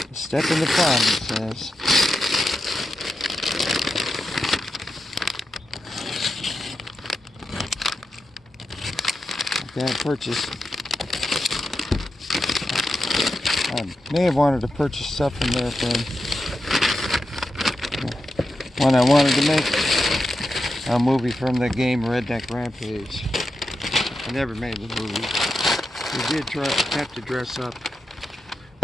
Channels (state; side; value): normal; both; correlation 0.88